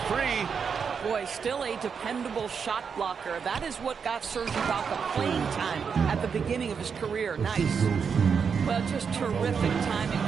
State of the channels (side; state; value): left; quieter; 6.3 dB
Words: 3. Boy, still a dependable shot blocker. That is what got Serge Ibaka playing time at the beginning of his career. Nice. Well, just terrific timing